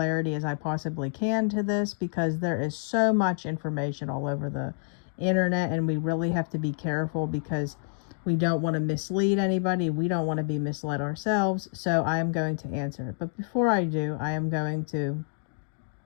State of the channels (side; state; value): right; silent; digital silence